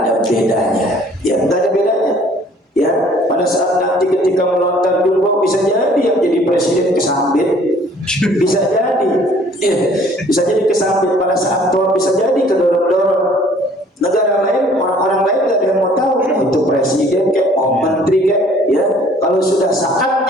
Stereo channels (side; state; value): both; normal; correlation 0.56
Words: bedanya. Ya, nggak ada bedanya. Ya, pada saat nanti ketika melontar jumroh bisa jadi yang jadi presiden kesambit, bisa jadi, ya, bisa jadi kesambit pada saat tua, bisa jadi kedorong-dorong. Negara lain, orang-orang lain nggak ada yang mau tahu itu presiden kayak, oh menteri kayak, ya. Kalau sudah